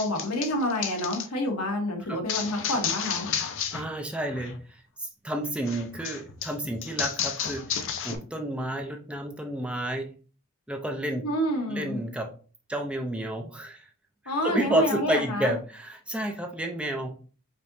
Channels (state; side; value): normal; both; correlation 0.38